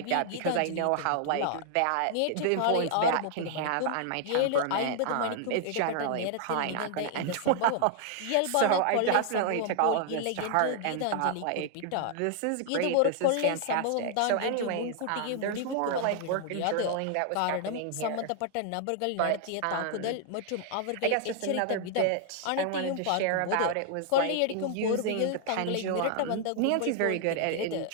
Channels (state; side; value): different; both; correlation 0.00